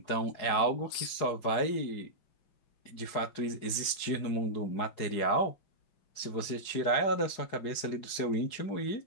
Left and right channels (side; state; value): right; late; 4.9 ms